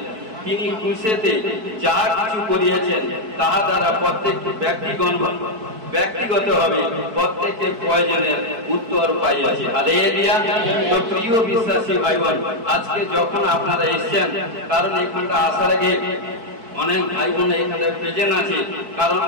তিনি ক্রুশেতে যা কিছু করিয়েছেন তাহা দ্বারা প্রত্যেক ব্যক্তিগতভাবে প্রত্যেকের প্রয়োজনের উত্তর পাইয়াছে হালেলুয়া তো প্রিয় বিশ্বাসী ভাই বোন আজকে যখন আপনারা এসেছেন কারণ এখানটা আসার আগে অনেক ভাই বোন এখানে প্রেজেন্ট আছে কারণ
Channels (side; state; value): left; late; 4.6 ms